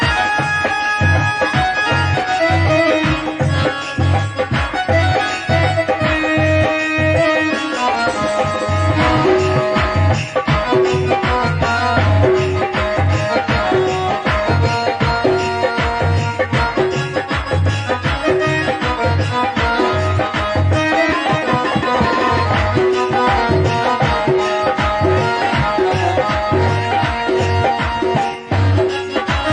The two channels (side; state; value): both; identical; correlation 1.00